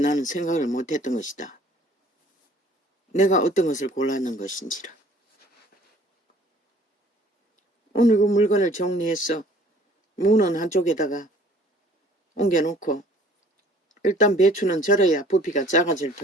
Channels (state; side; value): normal; both; correlation 0.54